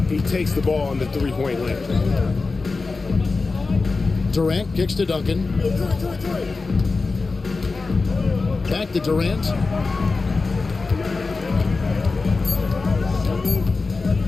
he takes the ball on the three-point line. Durant kicks to Duncan. Back to Durant.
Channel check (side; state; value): right; quieter; 3.9 dB